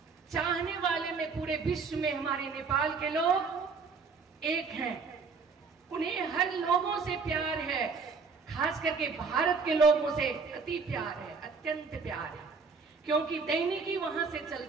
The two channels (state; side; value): quieter; left; 4.9 dB